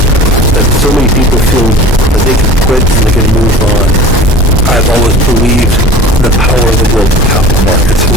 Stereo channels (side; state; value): both; normal; correlation 0.40